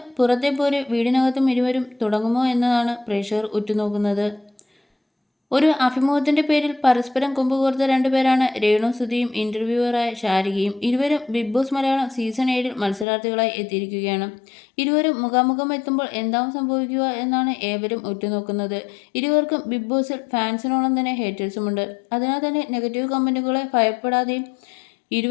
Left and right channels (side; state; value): right; drops out; at 13.1 s